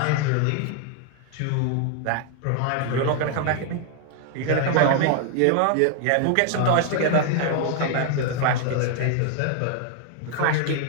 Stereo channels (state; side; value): different; both; correlation 0.00